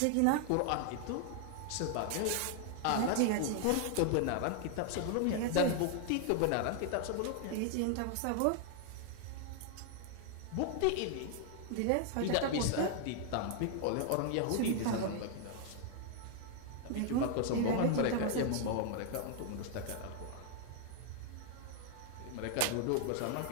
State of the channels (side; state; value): both; different; correlation 0.00